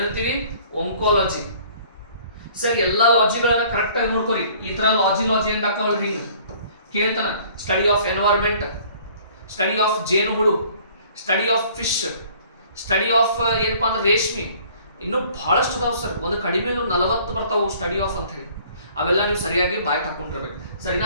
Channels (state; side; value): inverted; both; correlation -0.54